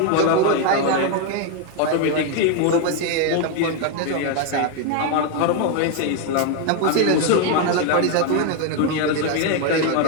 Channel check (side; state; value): both; different; correlation 0.01